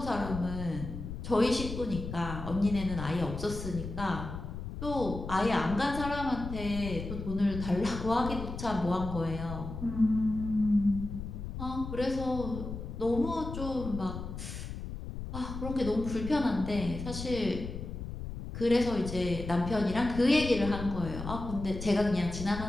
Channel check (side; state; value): left; noise; rumble, 8 dB below the sound